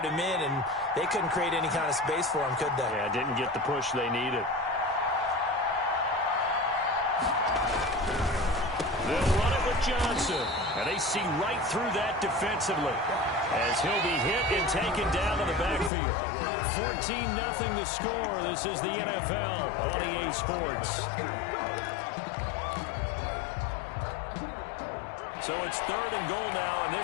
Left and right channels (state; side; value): drops out; right; at 15.9 s